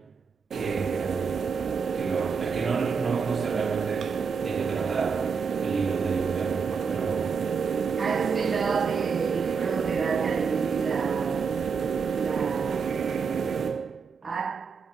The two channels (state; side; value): quieter; left; 5.8 dB